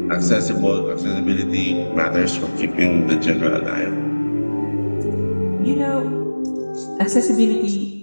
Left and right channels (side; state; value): both; inverted; correlation -1.00